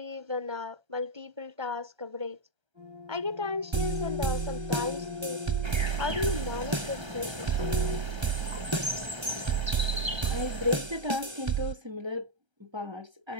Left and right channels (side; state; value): left; late; 1.3 ms